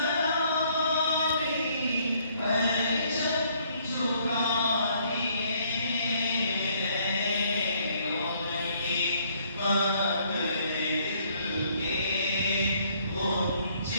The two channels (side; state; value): both; inverted; correlation -0.65